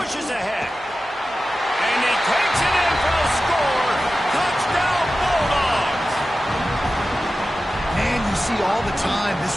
ahead. And he takes it in for a score. Touchdown, Bulldogs! Man, you see all the time this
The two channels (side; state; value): both; normal; correlation 0.94